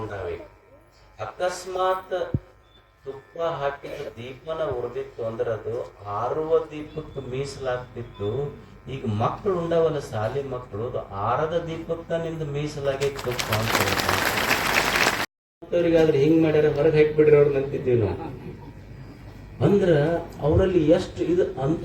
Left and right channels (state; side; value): identical; both; correlation 1.00